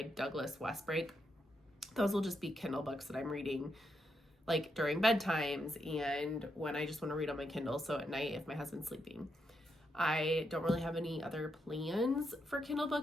Douglas Westbrake. Those will just be Kindle books that I'm reading like during bedtimes and when I just want to read on my Kindle, so at night if my husband's sleeping. I don't really have any other plans for Kindle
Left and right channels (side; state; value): both; normal; correlation 0.81